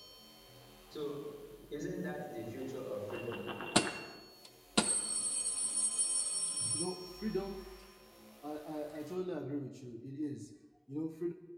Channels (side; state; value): both; identical; correlation 1.00